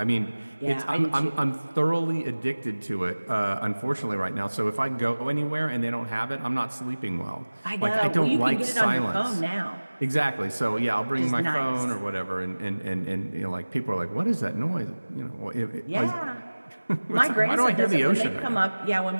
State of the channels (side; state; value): both; inverted; correlation -1.00